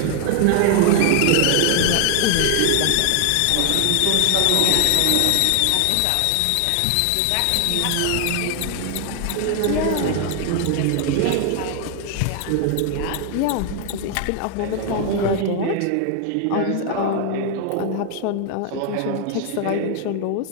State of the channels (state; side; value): different; both; correlation 0.00